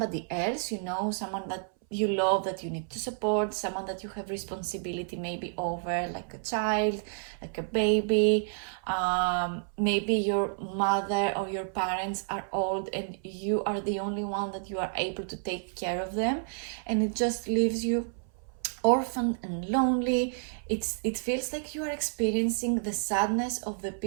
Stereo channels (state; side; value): silent; left; 58 dB below the other